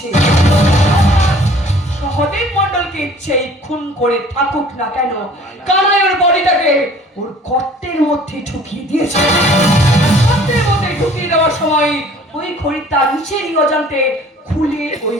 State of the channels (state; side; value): normal; both; correlation 0.52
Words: সহদেব মণ্ডলকে ইচ্ছেই খুন করে থাকুক না কেন, কানাই ওর বডিটাকে ওর গর্তের মধ্যে ঢুকিয়ে দিয়েছে। গর্তের মধ্যে ঢুকিয়ে দেওয়ার সময় ওই ঘড়িটা নিচেরই অজান্তে খুলে ওই